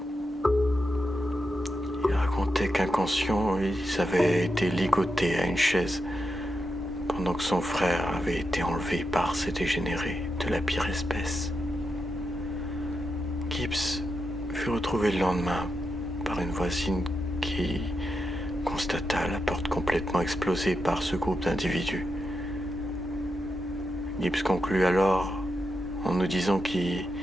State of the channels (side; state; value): both; normal; correlation 0.86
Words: Il racontait qu'inconscients, ils avaient été ligotés à une chaise pendant que son frère avait été enlevé par ces dégénérés de la pire espèce. Gibbs fut retrouvé le lendemain par une voisine qui constata la porte complètement explosée par ce groupe d'individus. Gibbs conclut alors en nous disant qu'il